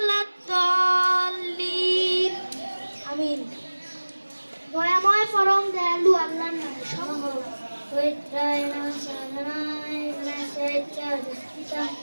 আমিন। দয়াময় পরম দয়ালু আল্লাহর নামে সকল পবিত্রায় নমঃ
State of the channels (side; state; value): both; inverted; correlation -1.00